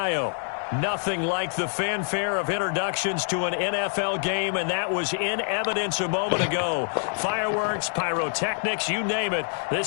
Nothing like the fanfare of introductions to an NFL game, and that was in evidence a moment ago. Fireworks, pyrotechnics, you name it,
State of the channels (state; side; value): silent; right; 61 dB below the other